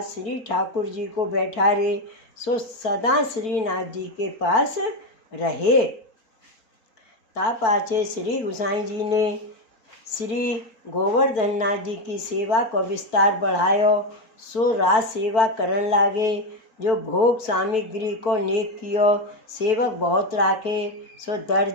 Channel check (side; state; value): right; late; 4.5 ms